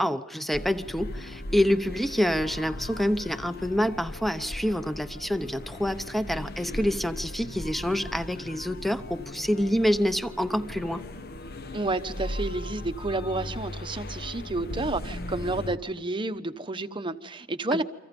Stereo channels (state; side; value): normal; both; correlation 0.84